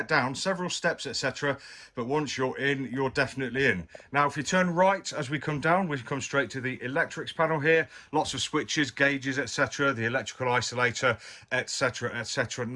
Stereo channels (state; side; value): identical; both; correlation 1.00